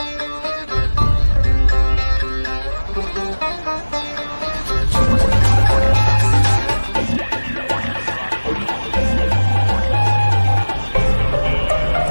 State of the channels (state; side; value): inverted; both; correlation -1.00